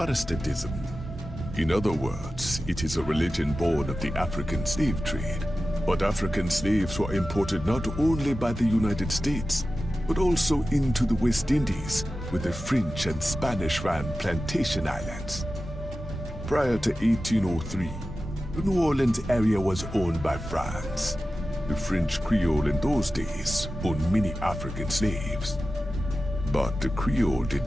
In other words, it is a religion born of the African slave trade. But African slaves were imported not only by the United States, but also into the West Indies, where the French and Spanish ran plantation islands. Prior to 1803, the New Orleans area was owned by France. The French Creole in those days owned many African slaves. But the Creole did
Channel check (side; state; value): both; normal; correlation 0.94